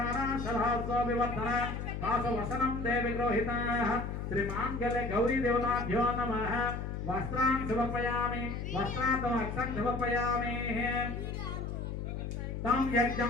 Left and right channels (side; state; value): left; noise; hum, 5 dB below the sound